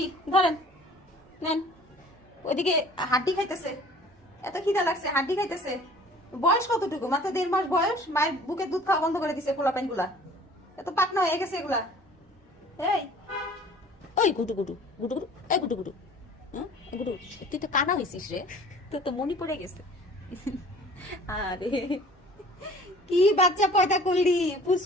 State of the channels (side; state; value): both; normal; correlation 0.49